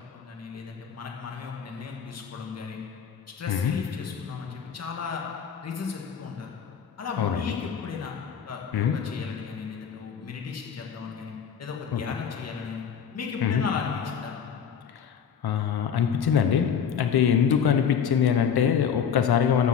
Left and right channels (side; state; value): right; quieter; 7.5 dB